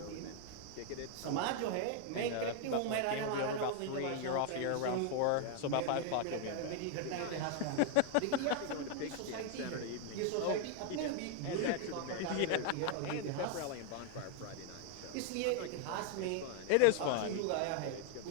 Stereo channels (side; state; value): both; different; correlation 0.00